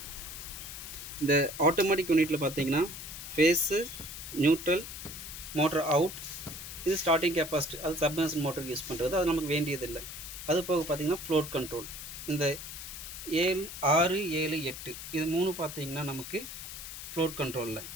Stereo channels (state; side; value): noise; left; hiss, 10 dB below the sound